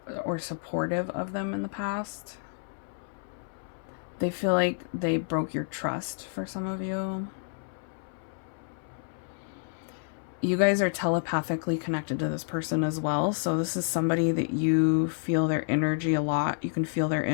or supportive of them in the past. They feel like they broke your trust for some of you. You guys are telepathically connected to this person as well. So this is somebody that you feel their energy a lot. You can feel their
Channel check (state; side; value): silent; right; 58 dB below the other